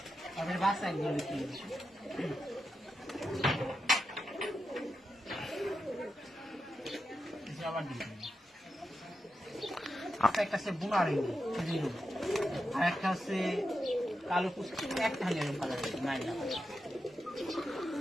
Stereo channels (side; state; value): both; normal; correlation 0.88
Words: আমাদের বাসায় গেলে কি একটা আছে বুনার আর একটা আছে কালো পুষ্টি একটা হাজার কালার নাই না